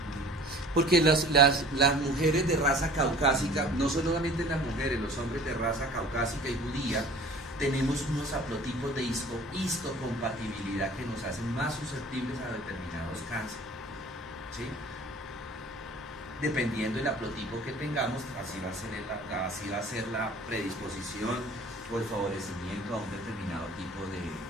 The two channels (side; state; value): both; normal; correlation 0.47